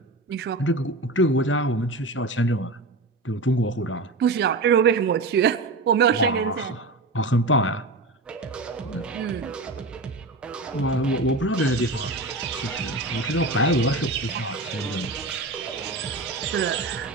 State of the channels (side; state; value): left; quieter; 3.0 dB